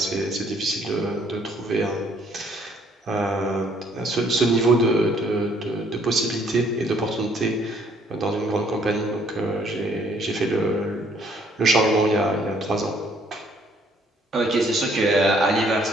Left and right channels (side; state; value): both; normal; correlation 0.64